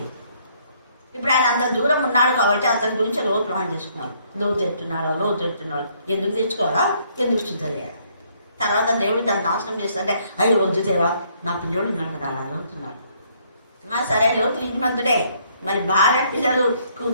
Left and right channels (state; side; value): inverted; both; correlation -0.67